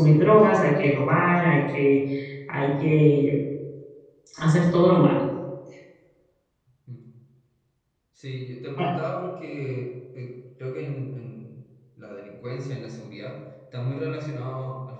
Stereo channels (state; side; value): identical; both; correlation 1.00